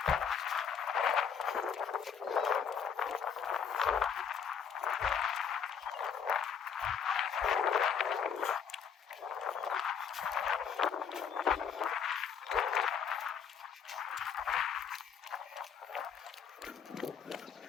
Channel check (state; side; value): quieter; right; 7.1 dB